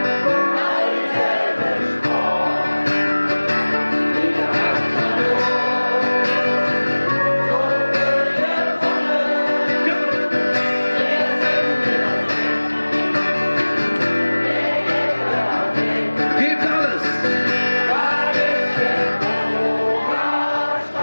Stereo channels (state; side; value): inverted; both; correlation -1.00